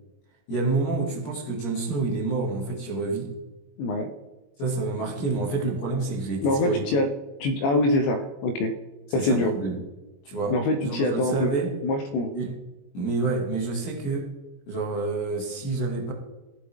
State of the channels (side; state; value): right; late; 21 ms